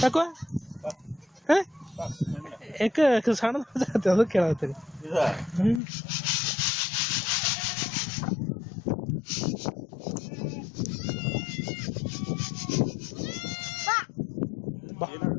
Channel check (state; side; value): drops out; right; at 5.8 s